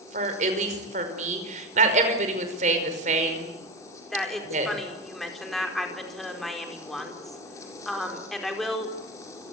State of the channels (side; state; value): both; normal; correlation 0.20